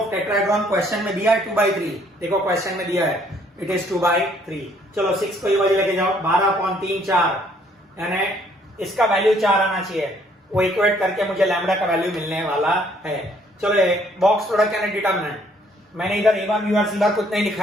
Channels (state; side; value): normal; both; correlation 0.64